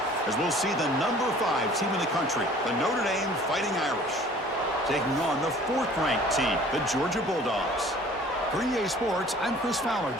As we'll see the number 5 team in the country, the Notre Dame Fighting Irish, taking on the 4th-ranked team, the Georgia Bulldogs. For EA Sports, I'm Chris Fowler,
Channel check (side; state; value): both; normal; correlation 0.50